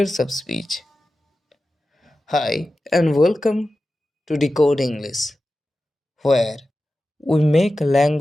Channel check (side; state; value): both; normal; correlation 0.93